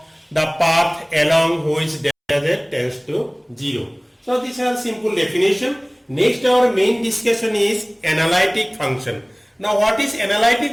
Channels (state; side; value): identical; both; correlation 1.00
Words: the path along which delta z tends to 0. So these are simple definition. Next our main discussion is analytic function. Now what is